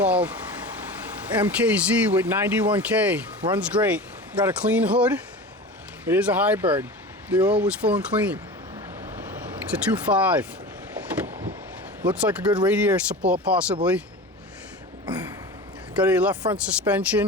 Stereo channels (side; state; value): both; normal; correlation 0.32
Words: MKZ with 91K. Runs great. Got a clean hood. It is a hybrid. The oil was full and clean. It's a 2.5. Looks like a good radiator support possibly. Got a left front